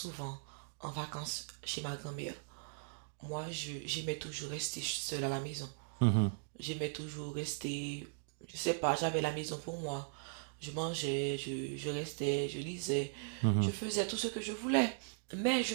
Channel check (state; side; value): silent; left; digital silence